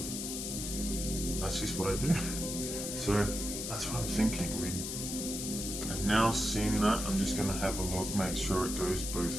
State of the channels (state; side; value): noise; left; hiss, 4 dB below the sound